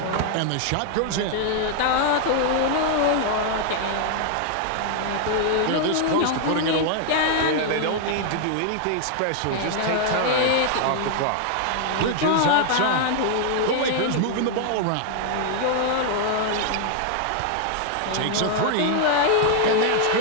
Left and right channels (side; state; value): both; different; correlation 0.00